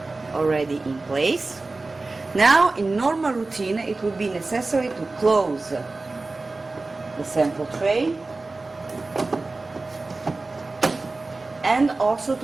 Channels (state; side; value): quieter; left; 3.4 dB